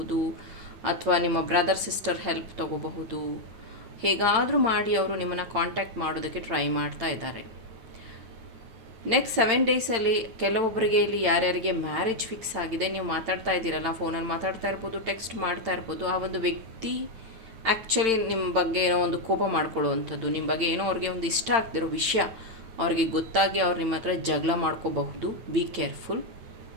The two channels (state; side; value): late; left; 8.9 ms